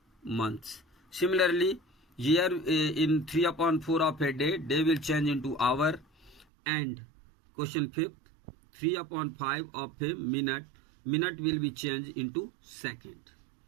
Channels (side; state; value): left; drops out; at 6.5 s